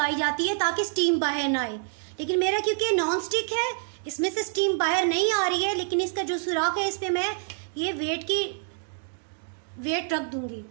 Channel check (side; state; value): left; silent; 57 dB below the other